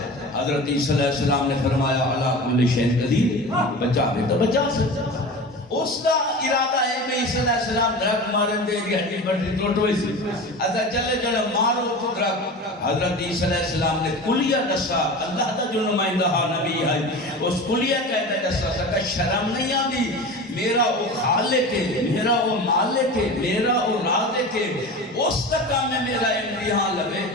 حضرت عیسیٰ علیہ السلام نے فرمایا اللہ کل شیء قدیر، بچا بھی تو بچا سکتا. اس کا ارادہ ہے کہ عیسی علیہ السلام درخت مارن دے گی ہڈی پٹی ٹوٹ ہوئی سی اچھا چلے چلے مارو تو درخت حضرت عیسی علیہ السلام نے کلیہ دسا اللہ دا جو نمائندہ نبی ہے اس کلیہ کہتا دسا سکا شرم نہیں آدھی میرا وہ خالق ہے میرا وہ مالک ہے میرا وہ رازق ہے اس کا کام ہے میرا امتحان لگے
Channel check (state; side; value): normal; both; correlation 0.32